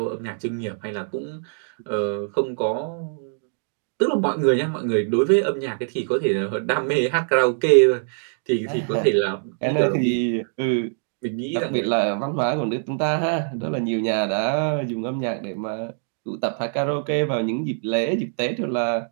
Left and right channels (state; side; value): silent; left; digital silence